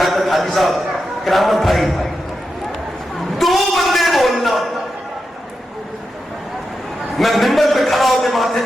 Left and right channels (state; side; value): normal; both; correlation 0.88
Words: हाजी साहब, करामत भाई, दो बंदे बोलना, मैं मिंबर पे खड़ा होकर माथे